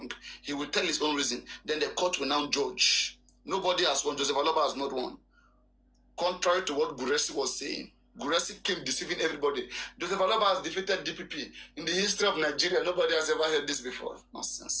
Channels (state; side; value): identical; both; correlation 1.00